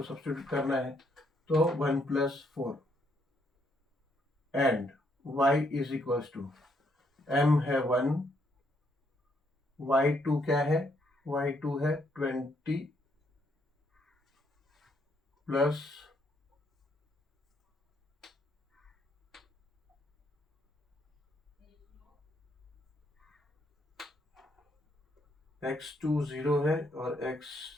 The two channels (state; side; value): normal; both; correlation 0.73